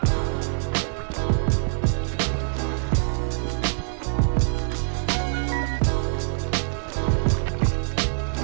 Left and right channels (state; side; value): silent; left; digital silence